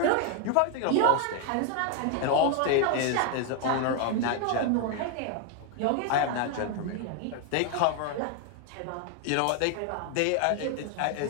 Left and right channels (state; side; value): different; both; correlation 0.00